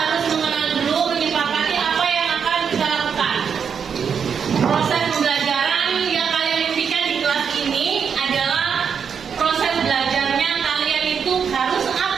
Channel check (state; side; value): quieter; left; 6.8 dB